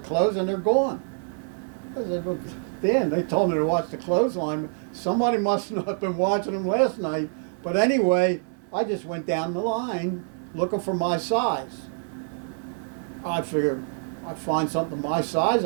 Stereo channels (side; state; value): left; silent; 61 dB below the other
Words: and they're gone. I said, well, Dan, they told me to watch the clothesline. Somebody must not have been watching them last night. But anyway, I just went down the line looking for my size. I figured I'd find something my size,